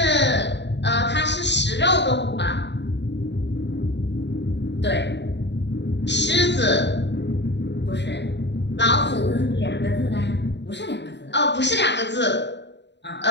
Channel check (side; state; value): right; late; 0.51 ms